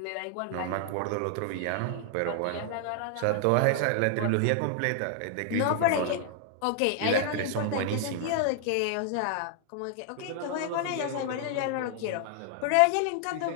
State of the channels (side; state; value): both; different; correlation 0.00